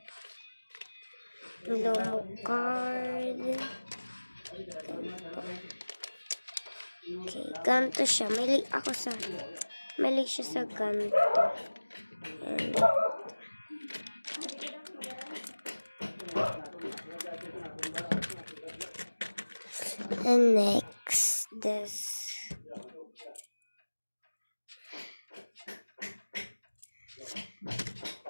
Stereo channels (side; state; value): both; inverted; correlation -1.00